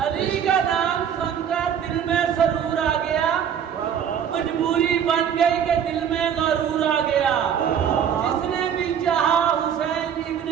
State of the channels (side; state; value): left; quieter; 8.4 dB